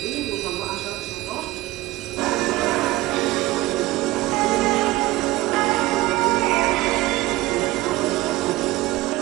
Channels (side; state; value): left; quieter; 18.0 dB